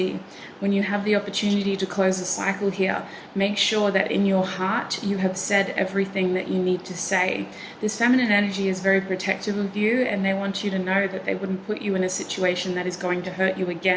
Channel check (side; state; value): both; identical; correlation 1.00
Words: When you have the opportunity to close a cycle here, make sure that in your heart you have said everything that you need to say. This feminine energy is very protective of you, and they want you to know that they wouldn't put you in a situation that is going to hurt you